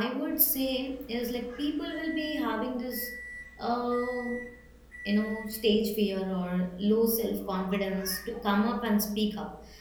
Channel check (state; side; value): identical; both; correlation 1.00